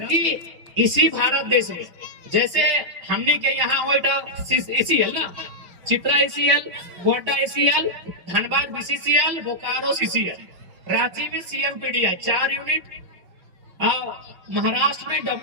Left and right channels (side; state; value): left; late; 5.7 ms